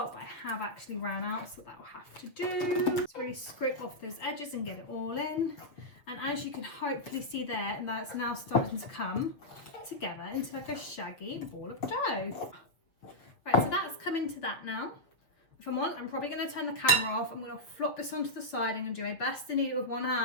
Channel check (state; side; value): late; right; 6.7 ms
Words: but I have actually ran out, so that will have to do. Just really scrape off those edges and get it all in. And as you can hopefully see there, and that's now starting to come together into like a shaggy ball of dough. Right, so that's come into that now. If I'm on, I'm probably going to turn the camera off. I'm going to flop this onto the side. I'm going to do my best to knead it with one